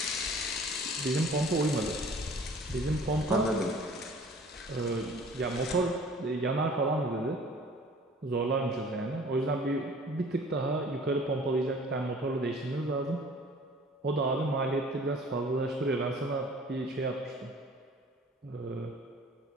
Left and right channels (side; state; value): both; normal; correlation 0.49